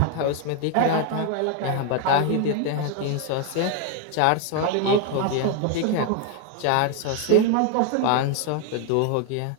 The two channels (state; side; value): different; both; correlation 0.01